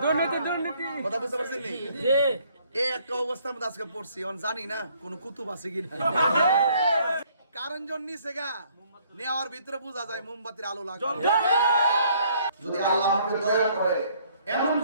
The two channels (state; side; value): inverted; both; correlation -0.63